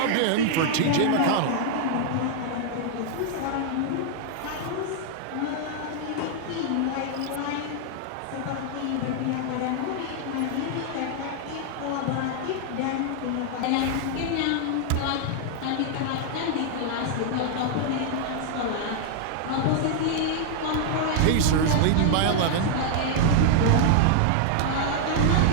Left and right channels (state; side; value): different; both; correlation 0.00